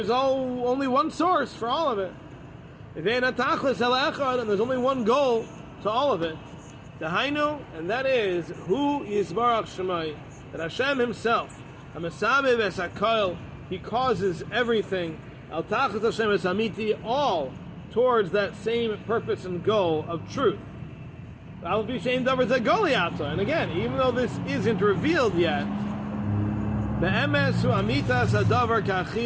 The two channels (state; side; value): identical; both; correlation 1.00